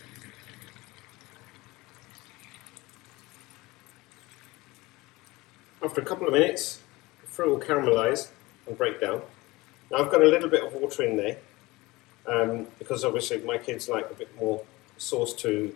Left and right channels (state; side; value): quieter; right; 21.3 dB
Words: After a couple of minutes, the fruit will caramelize and break down. Now I've got a little bit of water in there, because obviously my kids like a bit more sauce to